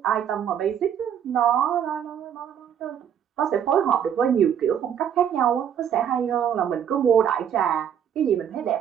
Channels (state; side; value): quieter; left; 8.9 dB